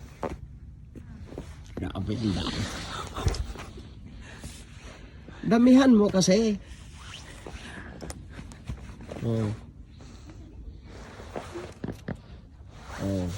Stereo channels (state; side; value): identical; both; correlation 1.00